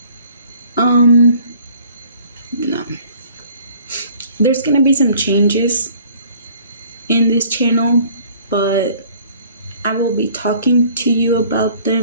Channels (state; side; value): inverted; both; correlation -0.55